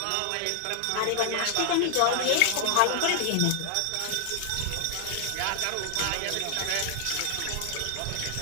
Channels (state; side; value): different; both; correlation 0.00